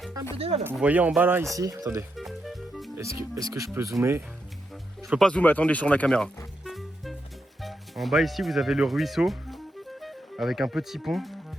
Un peu là. Vous voyez en bas là, ici? Attendez. Est-ce que je peux zoomer? Je peux pas zoomer, attendez, sur la caméra. En bas ici, vous avez le ruisseau avec un petit pont.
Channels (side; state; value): both; normal; correlation 0.83